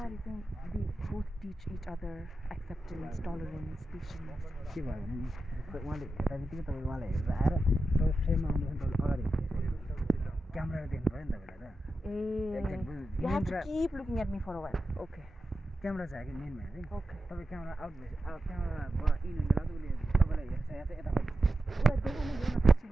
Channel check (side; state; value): both; normal; correlation 0.91